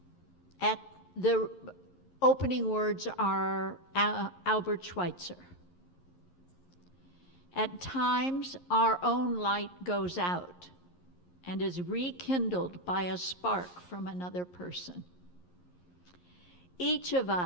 At the opening words are Albert Schweitzer. At times, our own light goes out and is rekindled by a spark from another person. Each of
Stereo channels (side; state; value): right; late; 11 ms